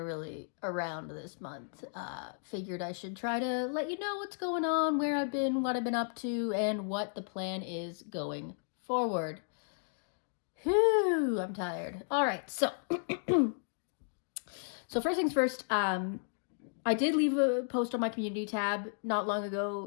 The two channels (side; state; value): right; silent; digital silence